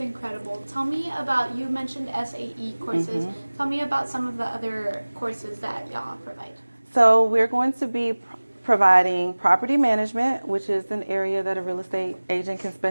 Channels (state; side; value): inverted; both; correlation -1.00